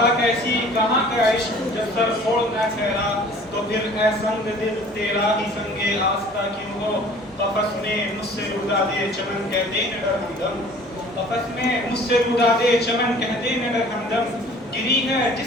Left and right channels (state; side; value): normal; both; correlation 0.49